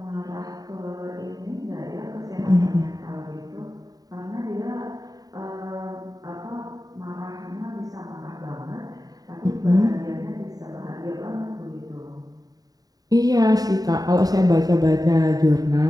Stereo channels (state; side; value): late; left; 0.18 ms